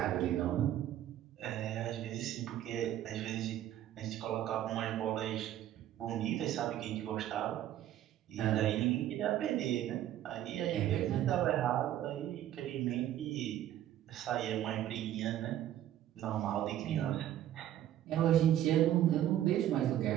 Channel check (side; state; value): left; quieter; 12.1 dB